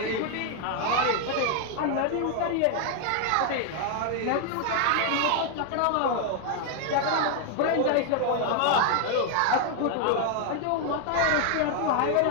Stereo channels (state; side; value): different; both; correlation 0.00